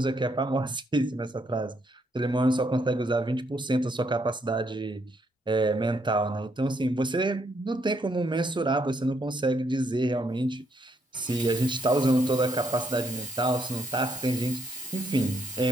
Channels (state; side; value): normal; both; correlation 0.73